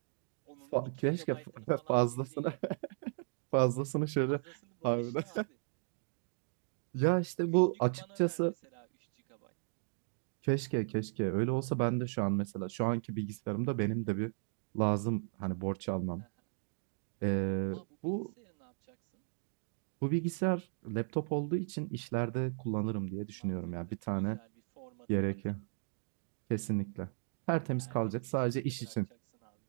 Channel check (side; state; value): left; silent; digital silence